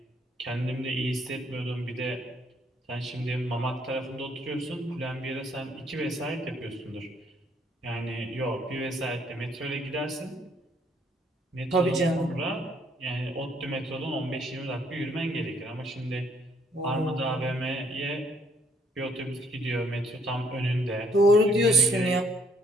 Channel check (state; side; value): normal; both; correlation 0.66